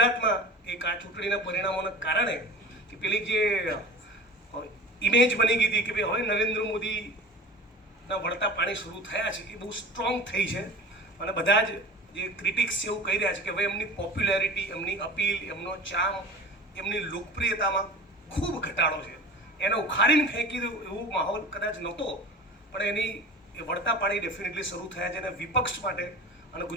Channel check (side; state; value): both; normal; correlation 0.36